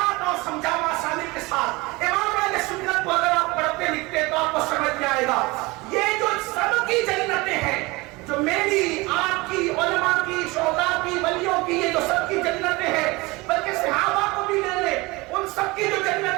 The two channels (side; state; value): left; quieter; 23.3 dB